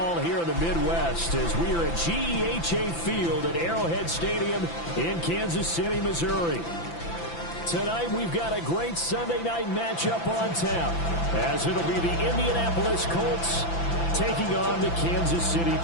here in the Midwest as we are at GEHA Field at Arrowhead Stadium in Kansas City, Missouri. Tonight we've got a great Sunday night matchup on tap as it'll be the Indianapolis Colts taking on the Kansas City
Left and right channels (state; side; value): late; right; 5.9 ms